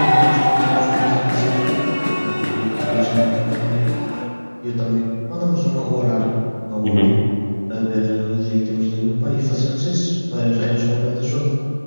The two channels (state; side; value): inverted; both; correlation -1.00